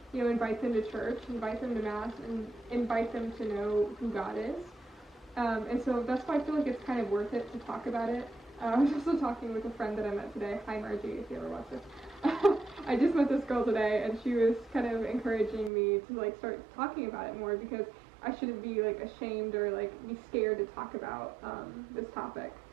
you know, invite them to church, invite them to mass, and invite them to know who God is. And so that's why I feel like it's kind of worth it to talk about it. I was also talking with a friend that I met today. Hi Margie, if you ever watch this. I just met this girl today, and she was kind of encouraging me to like start talking about it more, because I shouldn't be like ashamed or like be scared to talk about this topic.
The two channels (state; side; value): drops out; left; at 15.7 s